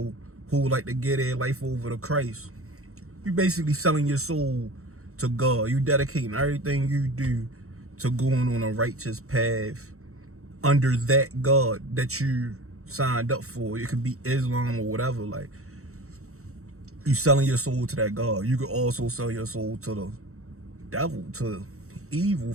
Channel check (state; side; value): late; left; 0.64 ms